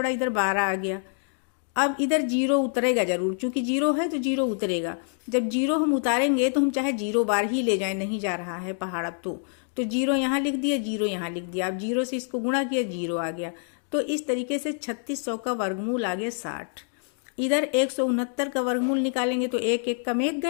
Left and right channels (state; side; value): silent; right; 56 dB below the other